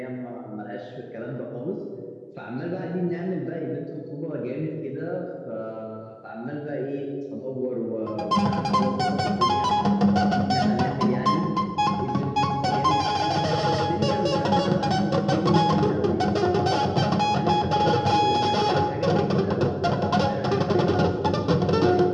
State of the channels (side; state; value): both; identical; correlation 1.00